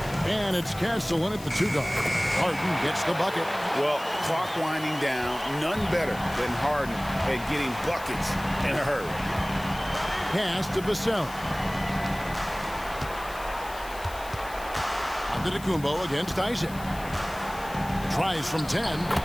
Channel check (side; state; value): left; noise; hiss, 17 dB below the sound